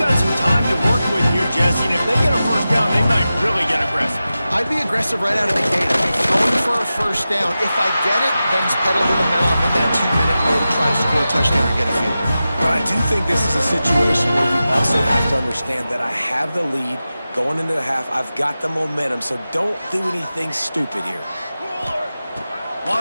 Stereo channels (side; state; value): both; inverted; correlation -0.93